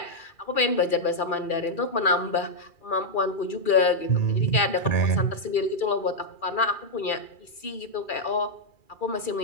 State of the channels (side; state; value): right; late; 2.4 ms